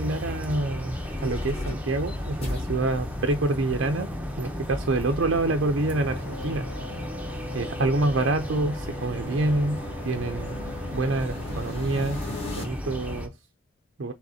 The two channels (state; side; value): normal; both; correlation 0.48